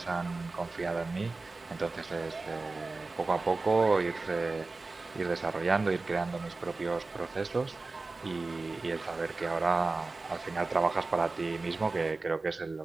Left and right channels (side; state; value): left; quieter; 3.6 dB